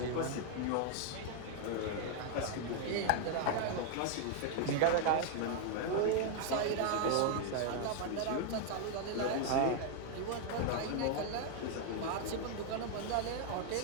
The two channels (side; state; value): both; different; correlation 0.00